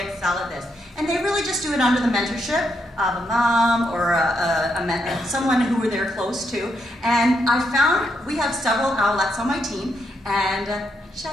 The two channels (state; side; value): normal; both; correlation 0.79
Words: excel at this. And they really just do it under the mentorship of a mom or someone who they're close to. And I found we have several owlettes on my team, and